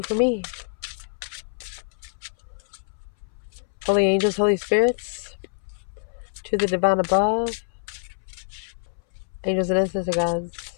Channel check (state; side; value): silent; right; 61 dB below the other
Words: for me. Holy angels, holy spirits, to the divine above, angels and ancestor gods,